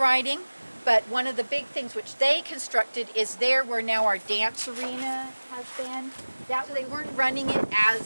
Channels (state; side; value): inverted; both; correlation -1.00